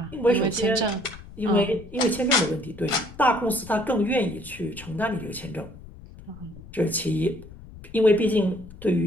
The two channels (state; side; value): noise; left; rumble, 17 dB below the sound